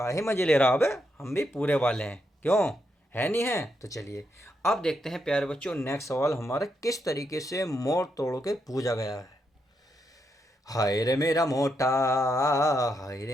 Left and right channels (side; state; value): both; normal; correlation 0.81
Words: मज़े ले रहा है बे, हम भी पूरे वाले हैं, क्यों है नहीं है। तो चलिए अब देखते हैं प्यारे बच्चों, नेक्स्ट सवाल हमारा किस तरीके से मोड़ तोड़ के पूछा गया है। हाय रे मेरा मोटा, हाय